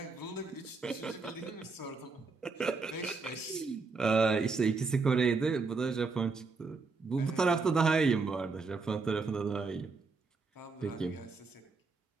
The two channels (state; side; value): quieter; left; 4.3 dB